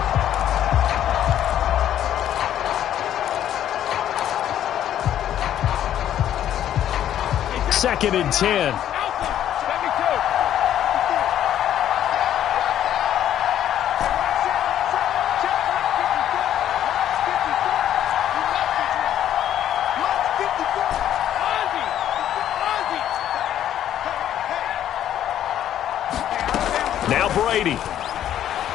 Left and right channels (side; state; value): right; quieter; 11.1 dB